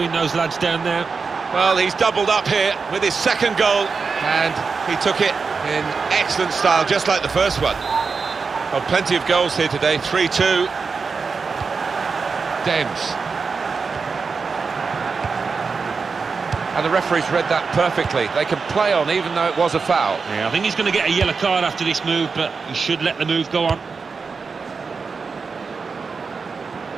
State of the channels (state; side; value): quieter; left; 4.9 dB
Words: those lads down there. Well, he's doubled up here with his second goal, and he took it in excellent style, just like the first one. Well, plenty of goals here today. 3-2. Dems. And the referee's read that perfectly. They can play on even though it was a foul. Yeah, I think he's going to get a yellow card after this move, but he should let the move go on.